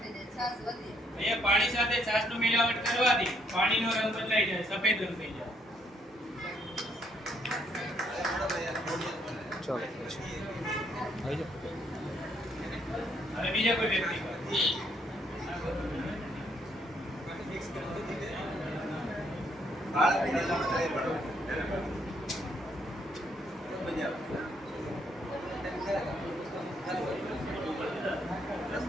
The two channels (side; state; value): both; normal; correlation 0.71